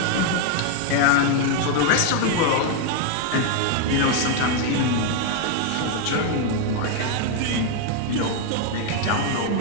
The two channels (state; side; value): different; both; correlation 0.01